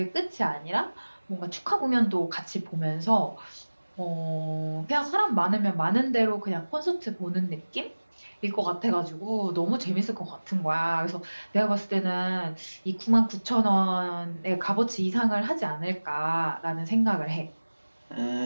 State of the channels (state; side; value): inverted; both; correlation -1.00